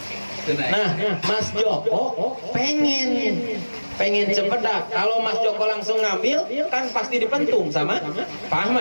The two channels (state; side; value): inverted; both; correlation -1.00